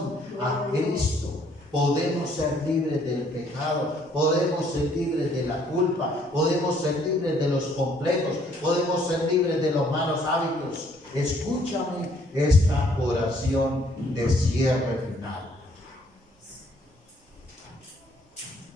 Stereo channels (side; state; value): both; normal; correlation 0.64